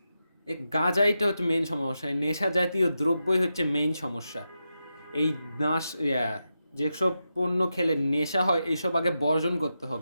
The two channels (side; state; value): both; inverted; correlation -0.88